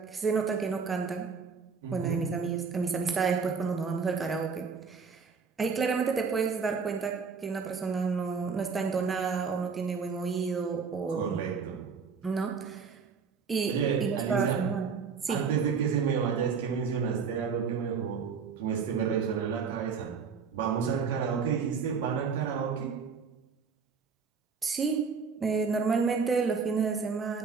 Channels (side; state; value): left; quieter; 5.6 dB